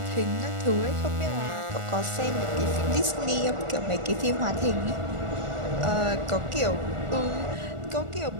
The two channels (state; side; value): late; left; 1.4 ms